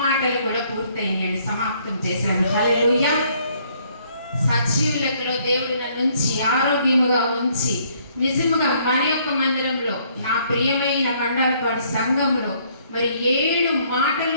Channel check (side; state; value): both; inverted; correlation -0.65